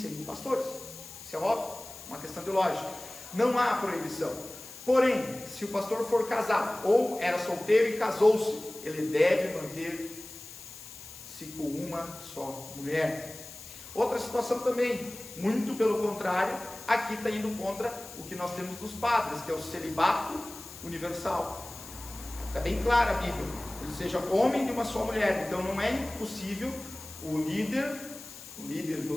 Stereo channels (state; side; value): noise; left; hiss, 15 dB below the sound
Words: pastores. Isso é óbvio, uma questão de lógica. Não há proibição. Porém, se o pastor for casado ou era solteiro e casou-se, ele deve manter-se com uma só mulher. Outra situação também, muito pelo contrário, aqui está indo contra o que nós temos dos padres, que é o celibato universal. Está bem clara a Bíblia, ele seja homem de uma só mulher. Então não é impossível o líder